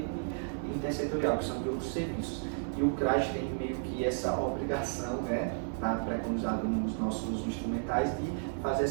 intersetorial, que são de outros serviços. E o CRAS tem meio que essa obrigação, né? Está preconizado nos nossos instrumentais de fazer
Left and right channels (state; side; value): silent; left; 56 dB below the other